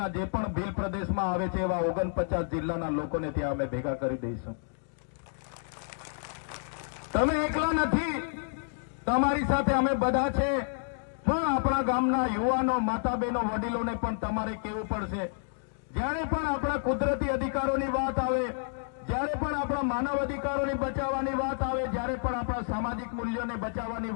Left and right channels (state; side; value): silent; right; digital silence